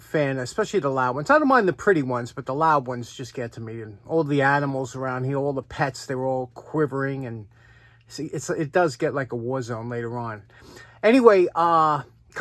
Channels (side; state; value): both; identical; correlation 1.00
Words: especially the loud ones. I don't mind the pretty ones, but the loud ones just get to me. And all the animals around here, all the pets, they were all quivering. And see, it does get like a war zone later on. Anyway,